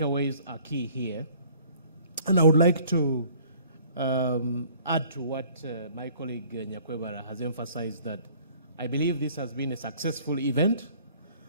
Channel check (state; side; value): inverted; both; correlation -0.55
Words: are key here. And I would like to add to what my colleague Nyakwebara has emphasized, that I believe this has been a successful event,